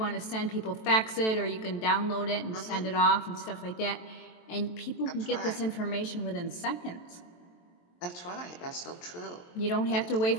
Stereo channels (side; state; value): right; late; 23 ms